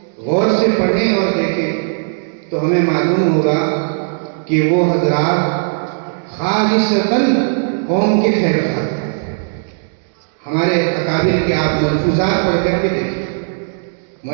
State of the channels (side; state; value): left; silent; digital silence